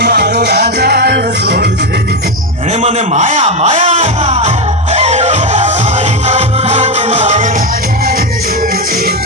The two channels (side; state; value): both; normal; correlation 0.10